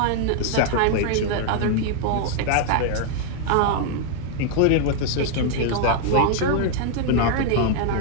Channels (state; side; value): different; both; correlation 0.00